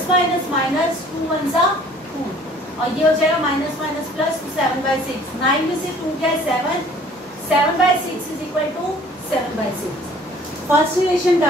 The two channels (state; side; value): normal; both; correlation 0.53